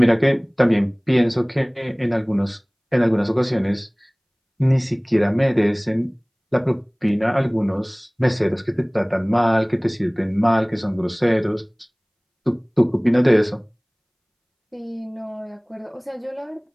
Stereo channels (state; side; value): identical; both; correlation 1.00